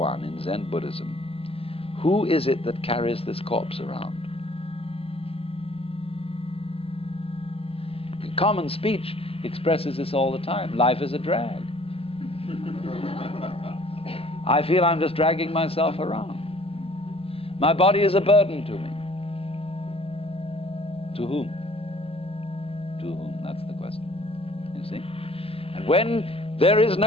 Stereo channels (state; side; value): late; right; 0.28 ms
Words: in Zen Buddhism. Who is it that carries this corpse around? Common speech expresses this all the time. Life is a drag. I feel I'm just dragging myself around. My body is a burden to me. To whom? To whom? That's the question. You see? And when there is